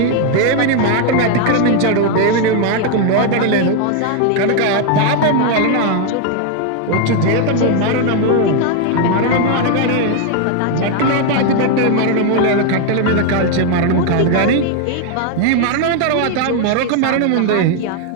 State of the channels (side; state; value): both; different; correlation 0.01